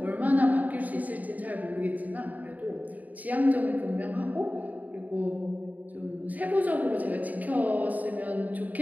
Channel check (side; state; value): left; late; 0.077 ms